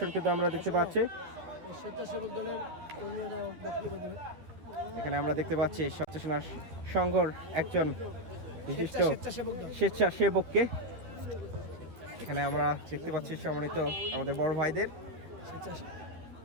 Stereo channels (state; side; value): late; left; 12 ms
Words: কিন্তু আমরা দেখতে পাচ্ছি। এখানে আমরা দেখতে পাচ্ছি স্বেচ্ছাসেনা সংঘর একজন বিশিষ্ট স্বেচ্ছাসেবককে এখানে আমরা দেখতে পাচ্ছি, সম্মানিত আমাদের বড় ভাইদের